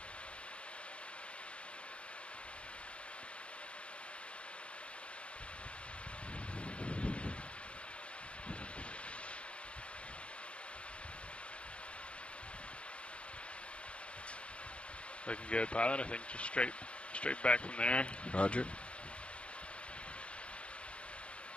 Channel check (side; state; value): right; late; 0.059 ms